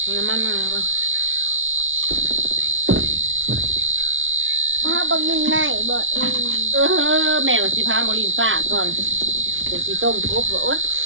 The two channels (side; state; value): left; late; 0.57 ms